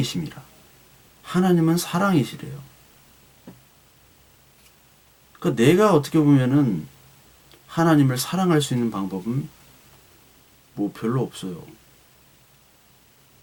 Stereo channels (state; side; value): identical; both; correlation 1.00